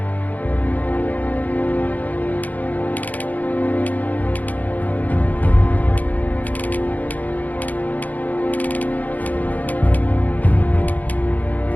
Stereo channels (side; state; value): right; late; 0.079 ms